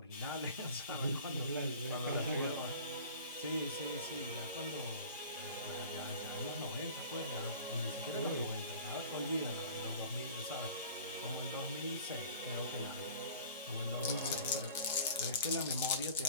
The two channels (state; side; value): inverted; both; correlation -0.44